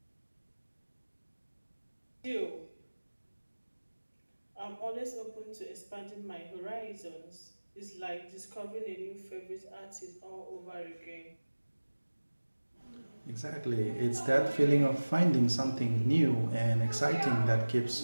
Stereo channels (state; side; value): inverted; both; correlation -1.00